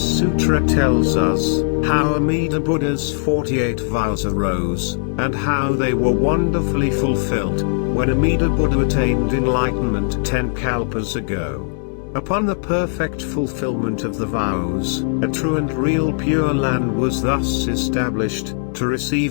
sutra tells us how Amida Buddha's 48 vows arose, and how they were wonderfully fulfilled when Amida Buddha attained enlightenment 10 kalpas ago. Upon the perfect fulfillment of the vows, a true and real Pure Land was thus established, to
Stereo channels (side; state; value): right; silent; 63 dB below the other